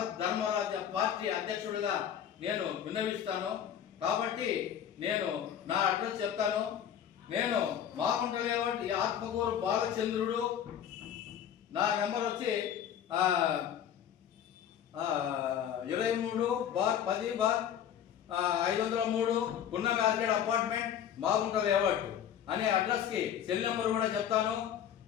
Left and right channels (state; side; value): quieter; right; 9.4 dB